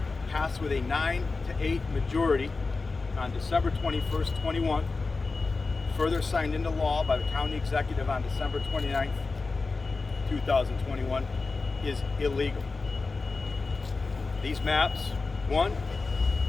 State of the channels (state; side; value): quieter; right; 4.0 dB